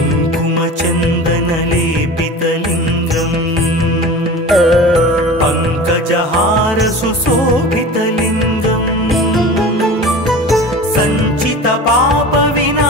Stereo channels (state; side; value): normal; both; correlation 0.35